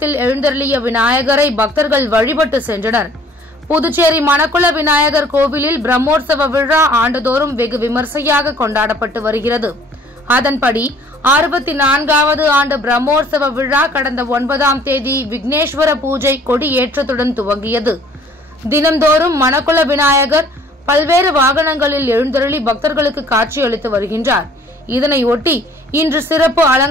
எழுந்தருளிய விநாயகரை பக்தர்கள் வழிபட்டு சென்றனர். புதுச்சேரி மணக்குள விநாயகர் கோவிலில் பிரம்மோற்சவ விழா ஆண்டுதோறும் வெகு விமர்சையாக கொண்டாடப்பட்டு வருகிறது. அதன்படி 64வது ஆண்டு பிரம்மோற்சவ விழா கடந்த 9ஆம் தேதி விக்னேஸ்வர பூஜை கொடி ஏற்றத்துடன் துவங்கியது. தினந்தோறும் மணக்குள விநாயகர் பல்வேறு வாகனங்களில் எழுந்தருளி பக்தர்களுக்கு காட்சியளித்து வருகின்றார். இதனையொட்டி இன்று சிறப்பு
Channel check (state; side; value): normal; both; correlation 0.56